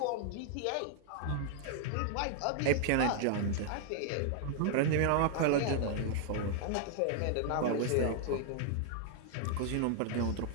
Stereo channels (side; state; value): both; different; correlation 0.00